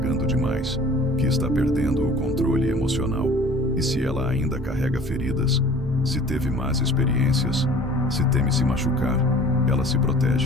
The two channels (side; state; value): both; normal; correlation 0.48